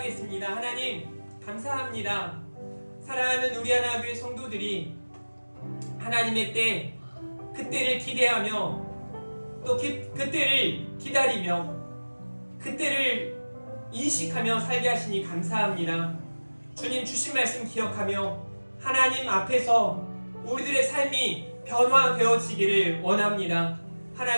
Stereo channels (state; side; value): inverted; both; correlation -1.00